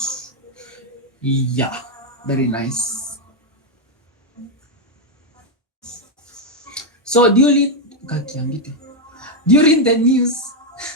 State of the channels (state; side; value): normal; both; correlation 0.01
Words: Yeah, very nice. So during the news,